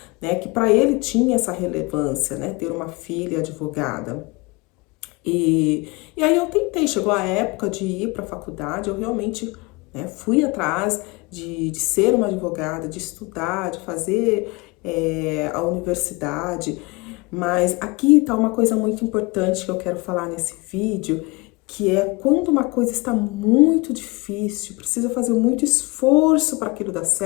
né, que para ele tinha essa relevância, né, ter uma filha advogada. E aí eu tentei, chegou a época de ir para a faculdade, eu realmente, né, fui atrás de ser uma advogada, de estudar, de fazer a universidade, mas aqui está uma coisa muito importante que eu quero falar nesse vídeo, que é quando uma coisa está muito difícil, precisa fazer muito esforço para aquilo dar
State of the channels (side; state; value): right; quieter; 26.2 dB